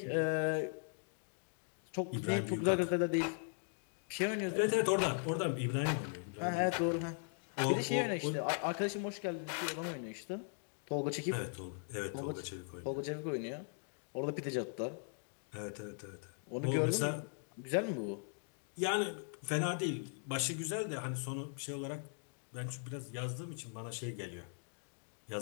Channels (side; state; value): right; silent; 52 dB below the other